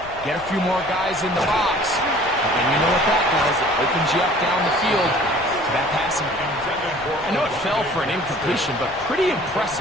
Get a few more guys in the box, and then you know what that does. It opens you up down the field to that passing game. I know it fell for an incompletion, but pretty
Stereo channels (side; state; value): left; noise; rumble, 19 dB below the sound